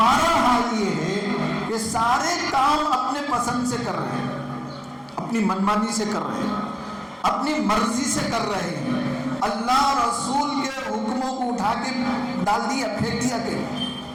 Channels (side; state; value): both; identical; correlation 1.00